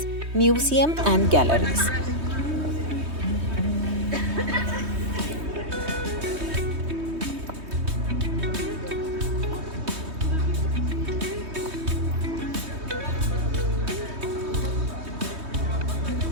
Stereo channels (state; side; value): late; left; 3.2 ms